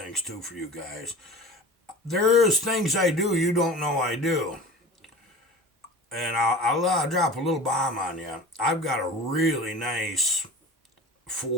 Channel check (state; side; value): normal; both; correlation 0.36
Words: too for you guys. There's things I do you don't know I do. And I'll drop a little bomb on you. I've got a really nice